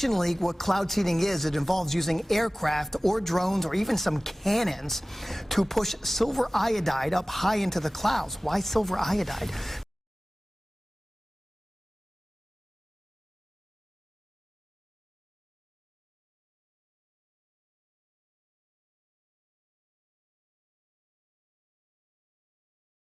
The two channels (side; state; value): both; normal; correlation 0.98